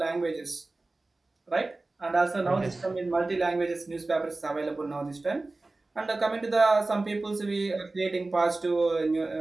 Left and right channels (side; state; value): left; quieter; 3.2 dB